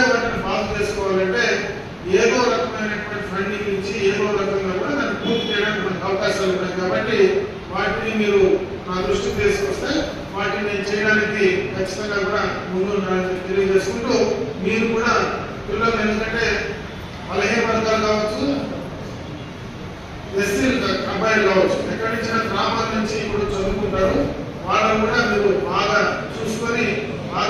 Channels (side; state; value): both; identical; correlation 1.00